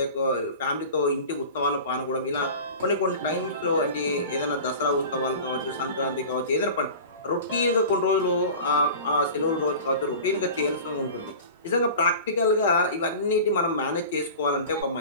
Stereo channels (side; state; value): both; inverted; correlation -0.37